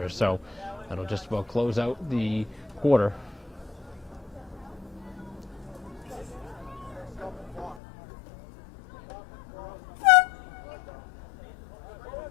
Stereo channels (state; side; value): drops out; right; at 7.8 s